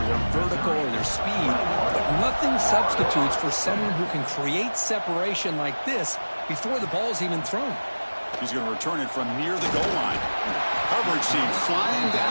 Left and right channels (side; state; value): both; inverted; correlation -1.00